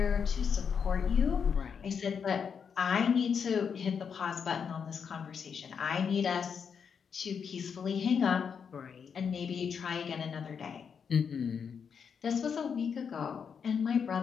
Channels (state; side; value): quieter; right; 6.7 dB